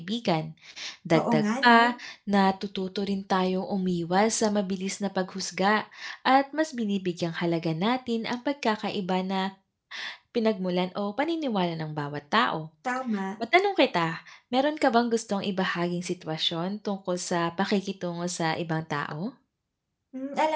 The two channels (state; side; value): identical; both; correlation 1.00